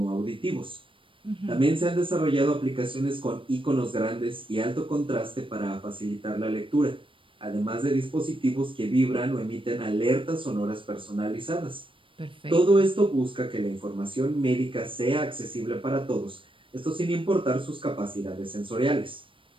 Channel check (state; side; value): late; left; 0.25 ms